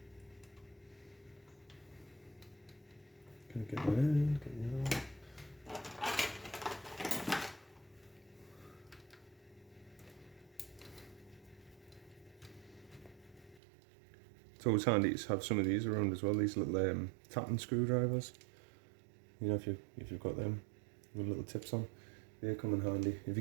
Gonna get that in, get that out. It's always handy to have some of these around as well, these little tapping screwdrivers. You know, if you've got them with little tips on, they come in handy. If you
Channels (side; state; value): left; drops out; at 13.6 s